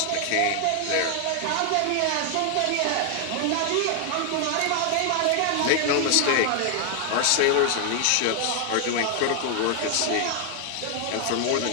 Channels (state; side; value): different; both; correlation 0.00